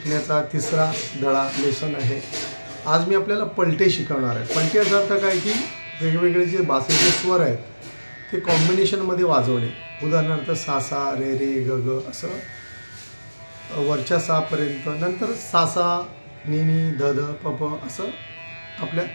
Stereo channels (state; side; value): inverted; both; correlation -1.00